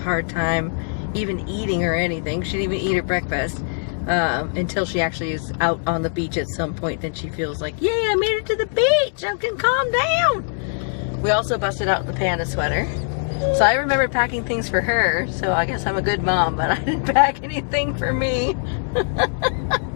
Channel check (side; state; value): right; silent; digital silence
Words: time even eating or anything. She didn't even eat her breakfast until she actually is out on the beach at some point. Then she feels like, yay, I made it to the beach, I can calm down. We also busted out the panda sweater, so I remembered packing things for her, so I guess I'm a good mom, but I didn't pack anything for me.